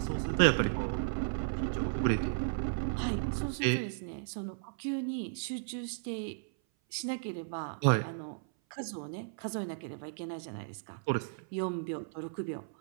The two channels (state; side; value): silent; left; 55 dB below the other